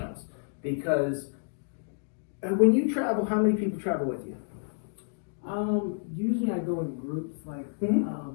Because when you travel, how many people travel with you? Usually I go in groups, like, we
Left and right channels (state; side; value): silent; right; digital silence